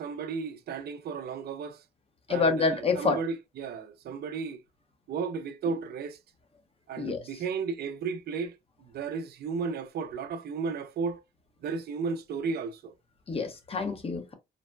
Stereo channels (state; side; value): normal; both; correlation 0.28